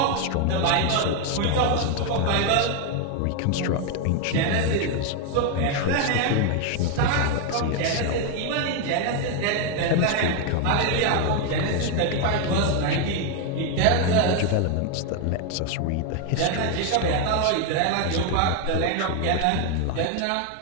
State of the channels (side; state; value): both; different; correlation 0.01